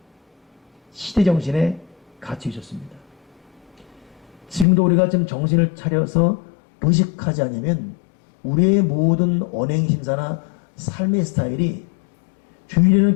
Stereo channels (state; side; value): drops out; right; at 4.7 s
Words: 시대 정신에 갇혀 있었습니다. 지금도 우리가 좀 정신을 차려서 의식하지 않으면 우리의 모든 언행심사나 삶의 스타일이 주일에는